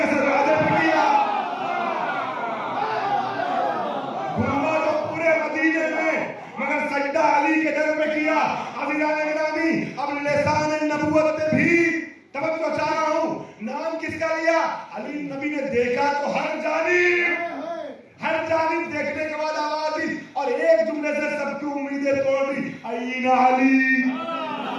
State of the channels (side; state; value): both; identical; correlation 1.00